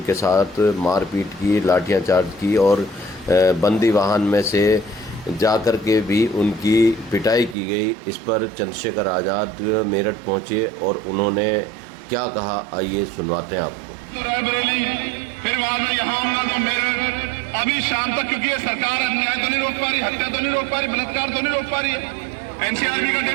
साथ मारपीट की, लाठियां चार्ज की और बंदी वाहन में से जाकर के भी उनकी पिटाई की गई। इस पर चंद्रशेखर आज़ाद मेरठ पहुंचे और उन्होंने क्या कहा, आइए सुनवाते हैं आपको। तो रायबरेली, फिर वहां में यहाँ आऊंगा तो मेरठ, अभी शाम तक, क्योंकि ये सरकार अन्याय तो नहीं रोक पा रही, हत्या तो नहीं रोक पा रही, बलात्कार तो नहीं रोक पा रही है। एनसीआरबी का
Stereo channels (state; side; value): drops out; left; at 7.6 s